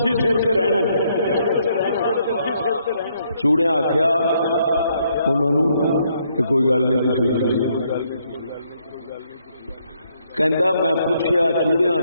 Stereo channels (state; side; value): inverted; both; correlation -0.72